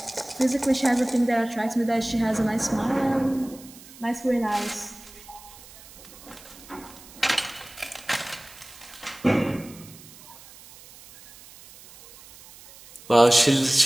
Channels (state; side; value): noise; right; hiss, 20 dB below the sound